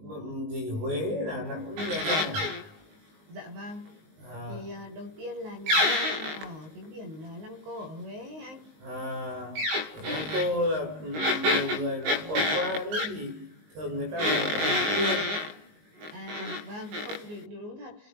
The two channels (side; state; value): left; late; 19 ms